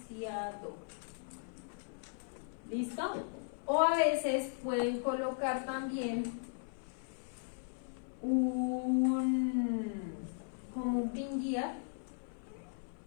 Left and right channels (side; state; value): right; silent; 53 dB below the other